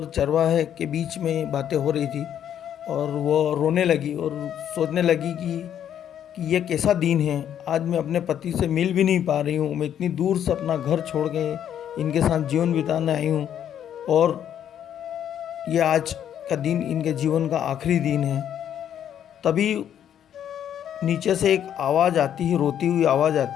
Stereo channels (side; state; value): right; quieter; 9.8 dB